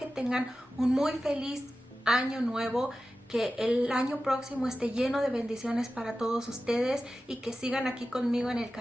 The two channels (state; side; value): normal; both; correlation 0.94